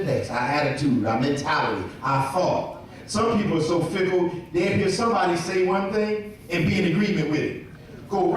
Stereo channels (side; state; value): both; identical; correlation 1.00